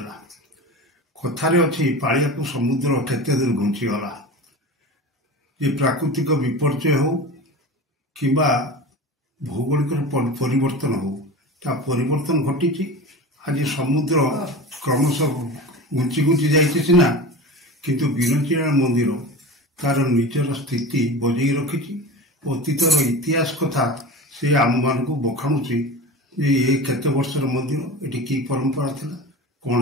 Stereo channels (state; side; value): normal; both; correlation 0.31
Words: କଥାରେ ଅଛି ପାଳିଆକୁ ସମୁଦ୍ର କେତେ ଦୂର ଘୁଞ୍ଚିଗଲା। ଯେ ପ୍ରାକୃତିକ ବିପର୍ଯ୍ୟୟ ହେଉ କିମ୍ବା ଭୌଗୋଳିକ ପରିବର୍ତ୍ତନ ହେଉ, ତା ପରିବର୍ତ୍ତନ ଘଟିଛି। ଆଜି ସମୁଦ୍ର କ୍ରମଶଃ ଘୁଞ୍ଚି ଘୁଞ୍ଚି ଯାଇଛି ସିନା, କିନ୍ତୁ ବିରଞ୍ଜନା ମନ୍ଦିର ତାର ନିଜର ସ୍ଥିତି ବଜାଇ ରଖିଛି। ଅତୀତର ଇତିହାସ କଥା ସେ ଆମମାନଙ୍କୁ ବଖାଣୁଛି ଯେ ଏ କେତେ ବର୍ଷର ମନ୍ଦିର, ଏଠି କି ପରମ୍ପରା ଥିଲା, କ'ଣ